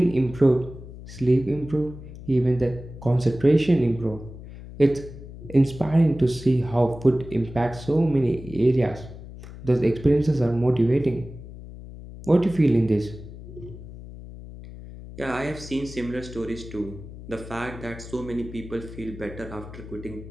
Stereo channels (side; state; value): left; noise; hum, 14 dB below the sound